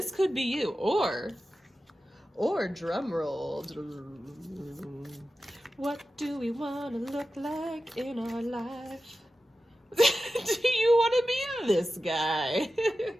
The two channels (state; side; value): normal; both; correlation 0.93